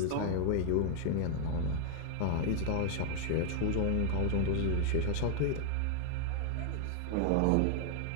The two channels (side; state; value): both; different; correlation 0.00